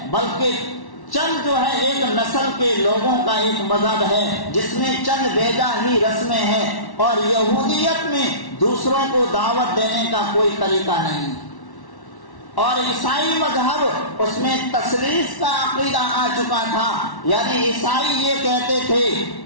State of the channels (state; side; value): late; right; 1.1 ms